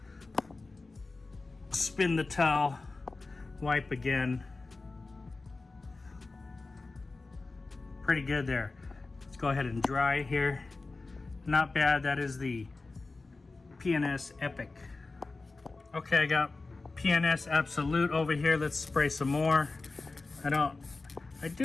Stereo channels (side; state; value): right; quieter; 3.6 dB